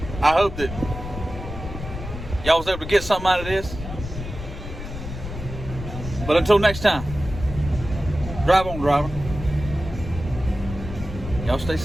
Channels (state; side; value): noise; left; rumble, 9 dB below the sound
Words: hope that y'all was able to get something out of this. But until next time, drive on, driver. Y'all stay